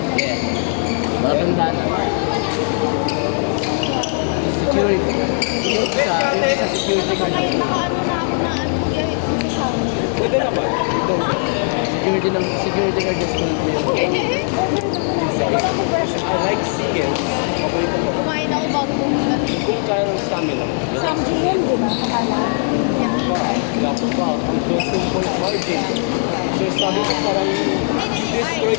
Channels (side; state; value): right; silent; 59 dB below the other